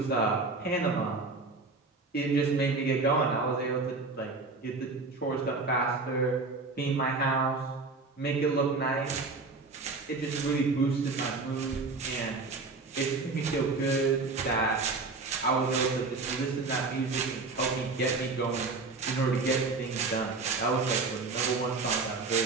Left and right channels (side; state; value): left; quieter; 3.9 dB